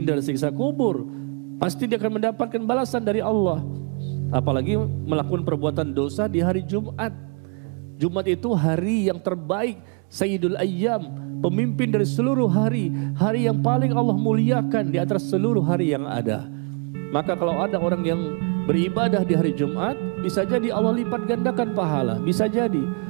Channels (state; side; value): quieter; left; 38.7 dB